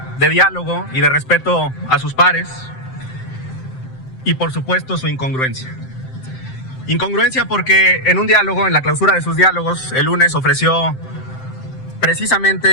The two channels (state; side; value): late; right; 7.7 ms